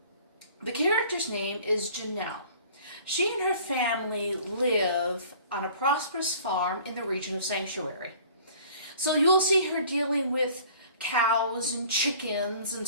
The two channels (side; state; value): both; inverted; correlation -0.49